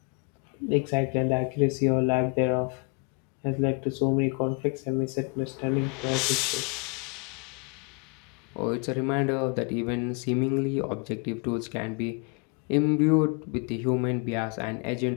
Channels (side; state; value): right; quieter; 35.4 dB